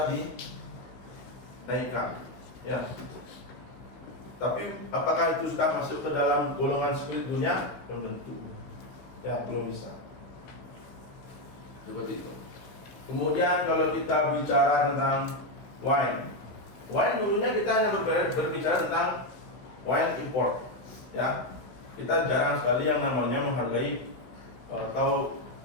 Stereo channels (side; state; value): right; late; 16 ms